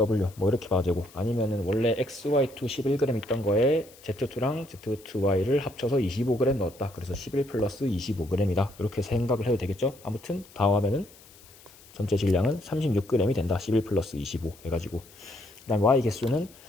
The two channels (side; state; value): left; noise; hiss, 24 dB below the sound